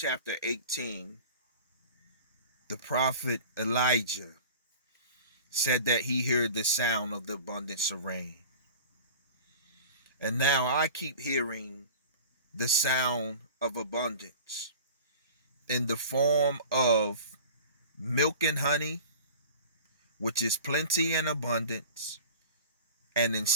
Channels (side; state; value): both; inverted; correlation -0.39